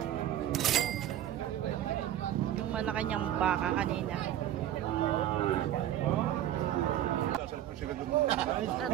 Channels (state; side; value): quieter; left; 12.0 dB